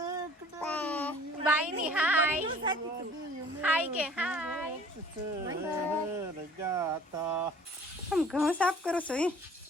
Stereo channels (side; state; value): both; normal; correlation 0.51